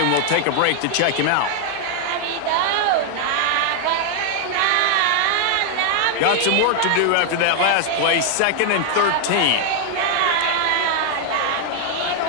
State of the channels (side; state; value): both; different; correlation 0.00